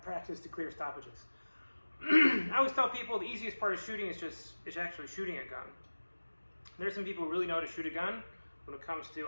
to clear stoppages. I always tell people the easiest part of shooting is actually shooting a gun. There's some people who really know how to shoot a gun when it comes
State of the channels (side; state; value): both; inverted; correlation -1.00